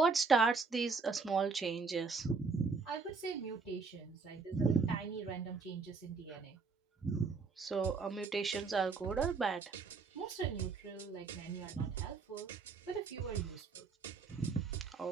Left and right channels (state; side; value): quieter; left; 4.6 dB